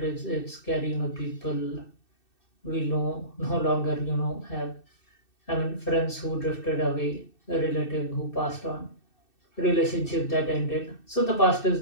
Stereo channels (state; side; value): late; right; 2.6 ms